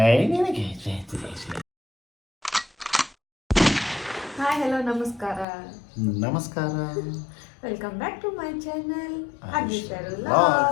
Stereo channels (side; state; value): right; drops out; at 5.5 s